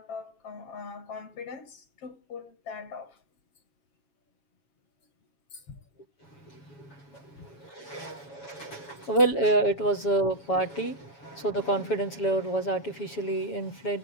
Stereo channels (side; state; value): right; late; 7.1 ms